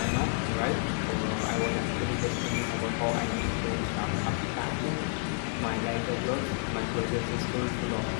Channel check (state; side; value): silent; right; 58 dB below the other